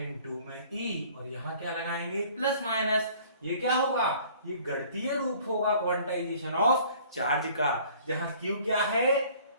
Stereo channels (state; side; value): inverted; both; correlation -0.53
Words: में E और यहां क्या लगाएंगे? Plus minus. ये क्या होगा? ये गणितीय रूप होगा क्वांटाइजेशन ऑफ चार्ज का, जहां Q क्या है?